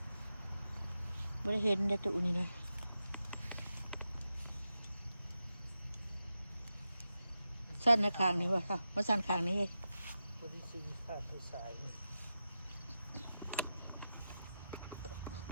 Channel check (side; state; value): both; inverted; correlation -0.91